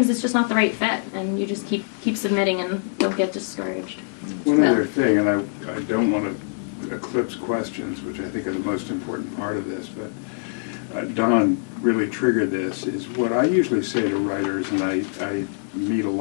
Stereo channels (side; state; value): right; silent; digital silence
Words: it's just not the right fit, and you just keep submitting and don't get discouraged. One other thing, and I don't want to eclipse questions, which I think are the most important part of this, but Don really triggered this, is what I usually say to writers, and I meet a